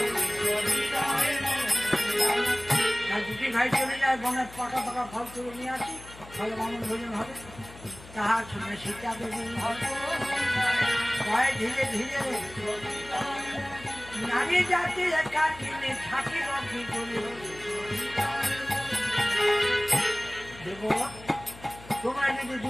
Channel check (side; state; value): left; noise; hum, 18 dB below the sound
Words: দুটি ভাই চলে যায় বনের পাকা পাকা ফল তুলে নিয়ে আসি ফলে বামন ভোজন হবে তাহার শুনে সীতা দেবী ভয় ধীরে ধীরে নারী জাতি একাকিনী থাকিব কি করে দেব তোমরা যদি